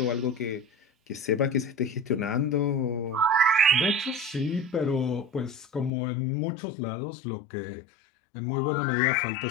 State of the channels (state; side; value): drops out; right; at 5.9 s